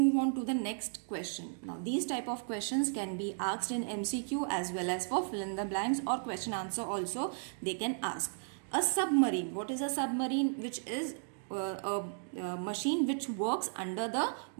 on to the next question. Now these type of questions can be asked in MCQ as well as for fill in the blanks or question answer also they can ask. A submarine. What is a submarine? Which is a machine which works under the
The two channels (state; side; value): silent; left; digital silence